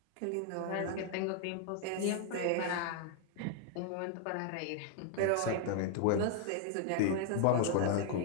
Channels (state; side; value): different; both; correlation 0.00